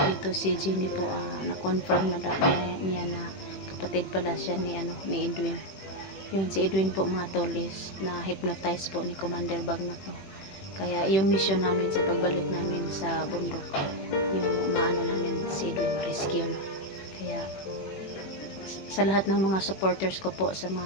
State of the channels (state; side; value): late; right; 21 ms